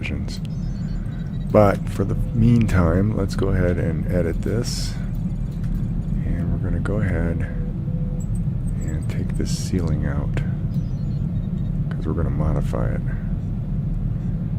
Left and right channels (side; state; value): both; identical; correlation 1.00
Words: But for the meantime, let's go ahead and edit this. And we're going to go ahead and take this ceiling out, because we're going to modify it.